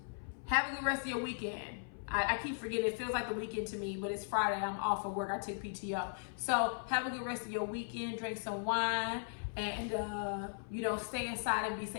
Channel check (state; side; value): silent; right; 53 dB below the other